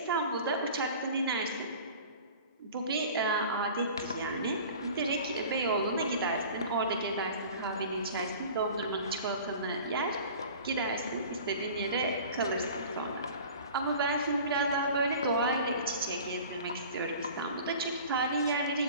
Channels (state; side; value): inverted; both; correlation -0.42